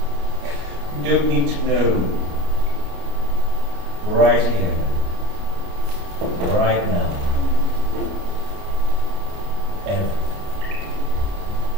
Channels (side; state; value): left; late; 29 ms